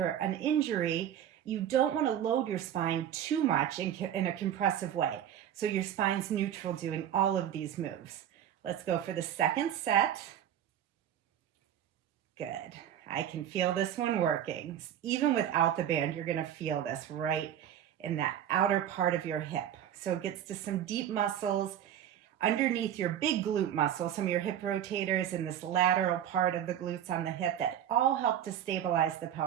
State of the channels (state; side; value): quieter; left; 10.3 dB